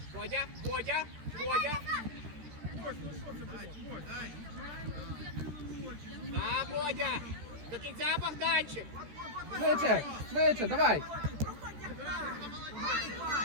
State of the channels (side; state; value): left; late; 14 ms